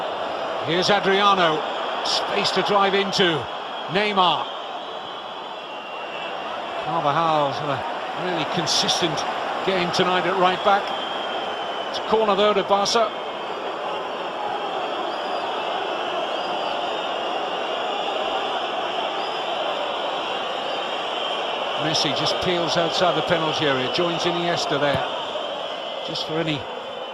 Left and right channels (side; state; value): both; identical; correlation 1.00